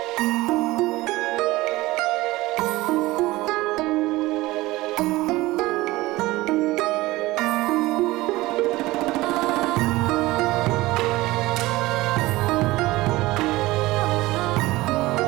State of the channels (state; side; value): quieter; left; 19.1 dB